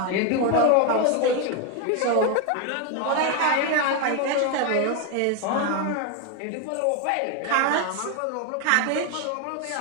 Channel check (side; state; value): both; different; correlation 0.01